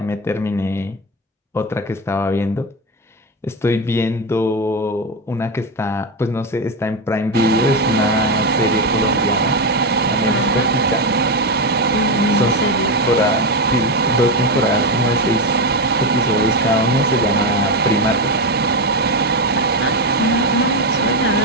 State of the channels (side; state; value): both; normal; correlation 0.11